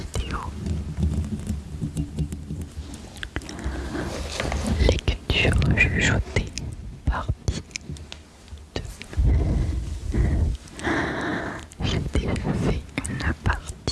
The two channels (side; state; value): both; identical; correlation 1.00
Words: lecture chuchotée partie 2. J'ai déjà fait une